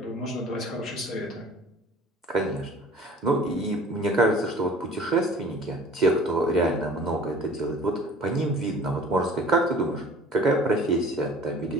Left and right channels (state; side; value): normal; both; correlation 0.46